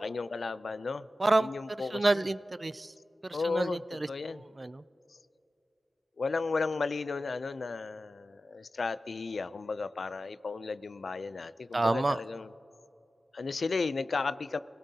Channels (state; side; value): normal; both; correlation 0.94